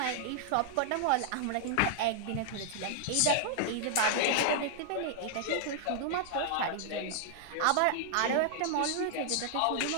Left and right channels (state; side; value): different; both; correlation -0.01